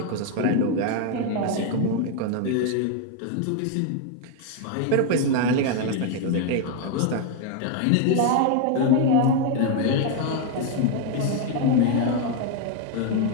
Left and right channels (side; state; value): both; different; correlation 0.01